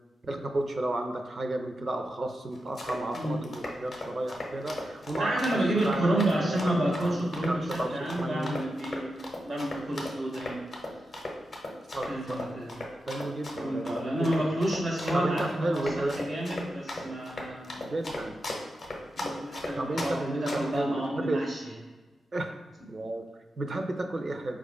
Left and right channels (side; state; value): both; normal; correlation 0.89